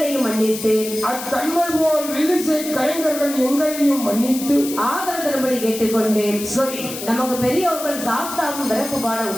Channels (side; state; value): left; noise; hiss, 9 dB below the sound